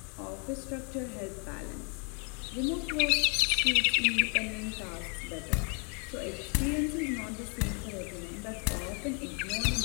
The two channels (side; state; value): right; quieter; 37.8 dB